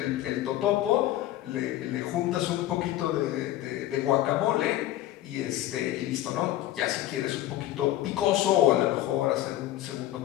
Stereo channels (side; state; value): right; quieter; 14.3 dB